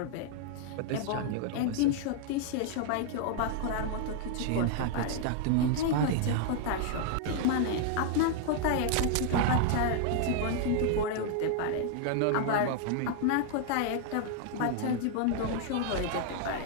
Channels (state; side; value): different; both; correlation 0.00